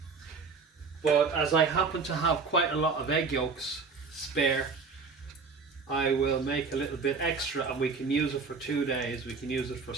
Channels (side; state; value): left; quieter; 4.8 dB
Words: but as I happen to have quite a lot of egg yolks spare, I will make a little bit extra, and we can use it for 2 days. We can use it for